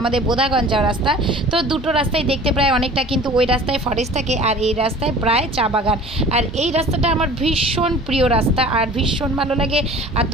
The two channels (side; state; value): both; normal; correlation 0.44